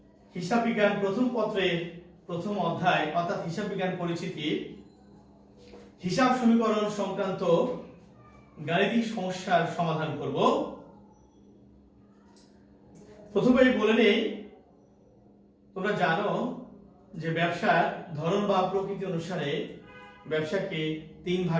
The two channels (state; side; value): identical; both; correlation 1.00